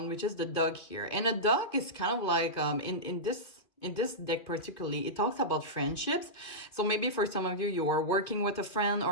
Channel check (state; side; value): late; right; 2.4 ms